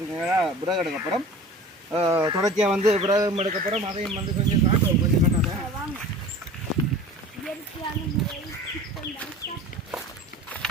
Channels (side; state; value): both; normal; correlation 0.40